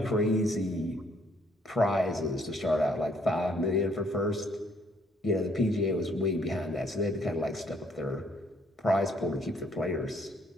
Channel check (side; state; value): both; normal; correlation 0.66